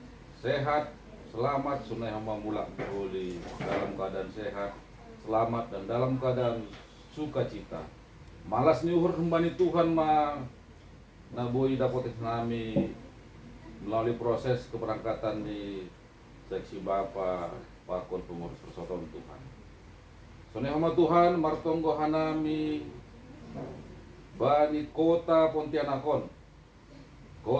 sehat selamat sunai hamba mulak boleh dalam keadaan sehat selamat dan dalam keadaan sukacita. Malas ni uhur kembali Tuhan ma na boy dapat nami melalui proses keberangkatan di seksi Bapa pakon pengurus persatuan Tuhan. Sunai hamba Tuhan martonggo hanami bani kota Pontianakon,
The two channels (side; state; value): both; identical; correlation 1.00